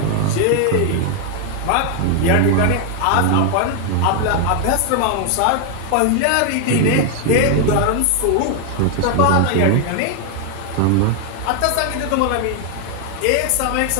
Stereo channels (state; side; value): different; both; correlation 0.00